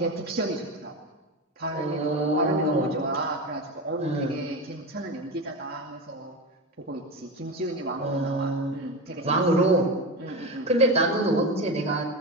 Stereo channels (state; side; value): normal; both; correlation 0.21